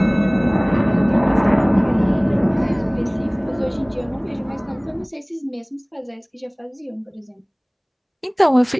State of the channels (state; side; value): identical; both; correlation 1.00